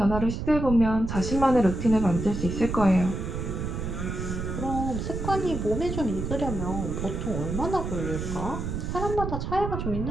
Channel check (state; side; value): noise; right; rumble, 4 dB below the sound